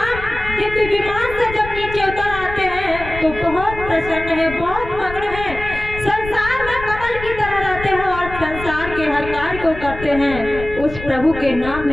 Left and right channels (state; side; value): noise; left; rumble, 11 dB below the sound